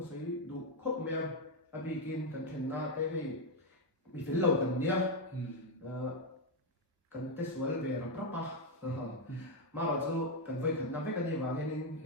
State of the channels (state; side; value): normal; both; correlation 0.04